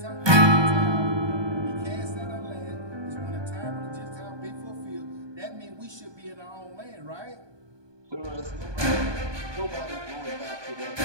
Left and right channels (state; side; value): late; left; 1.2 ms